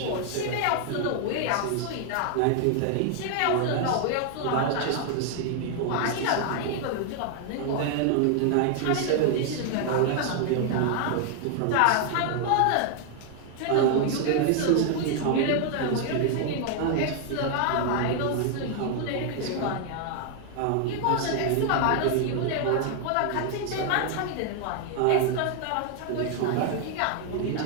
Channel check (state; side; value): different; both; correlation 0.00